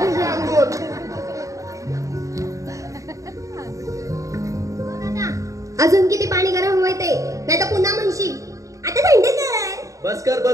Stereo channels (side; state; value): left; late; 0.16 ms